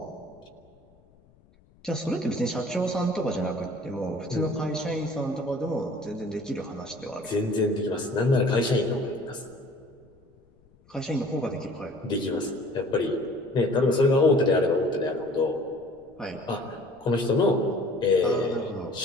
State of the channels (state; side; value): noise; left; rumble, 30 dB below the sound